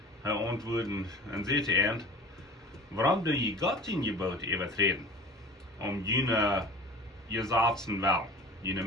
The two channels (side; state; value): both; normal; correlation 0.40